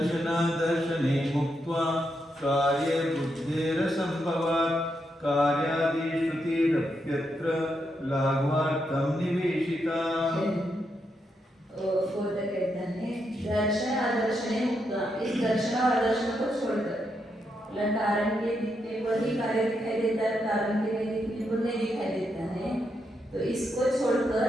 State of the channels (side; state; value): both; normal; correlation 0.81